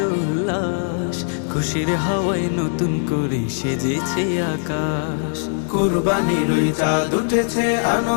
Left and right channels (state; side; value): silent; right; digital silence